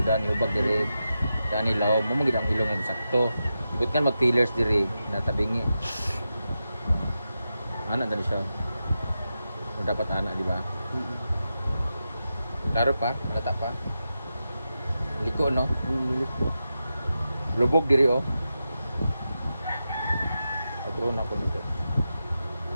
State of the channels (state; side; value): inverted; both; correlation -0.90